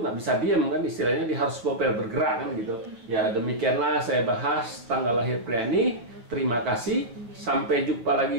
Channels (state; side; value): late; left; 8.9 ms